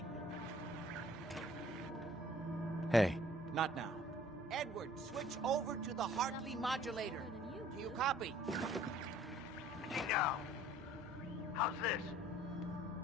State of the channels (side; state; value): both; normal; correlation 0.54